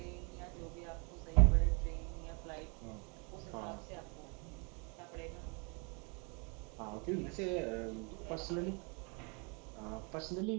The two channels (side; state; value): left; quieter; 33.7 dB